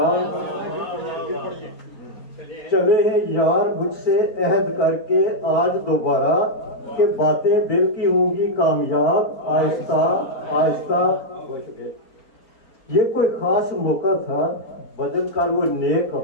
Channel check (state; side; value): late; right; 4.3 ms